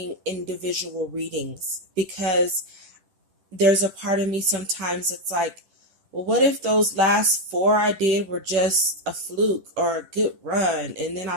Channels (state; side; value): late; left; 10 ms